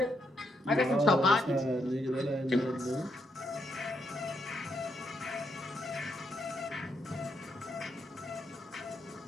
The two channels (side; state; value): both; normal; correlation 0.78